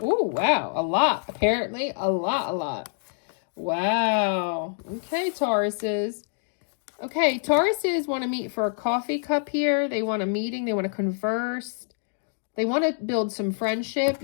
Oh, wow. A lot. Apparently, a lot. Wow. Okay, Tauruses. Okay, Tauruses want to meet for a coffee cup here. They want a meeting. They want to converse. They want to build some friendship.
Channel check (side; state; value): right; silent; digital silence